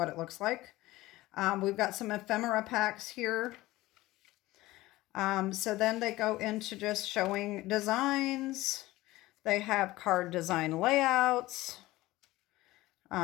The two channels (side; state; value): right; quieter; 18.0 dB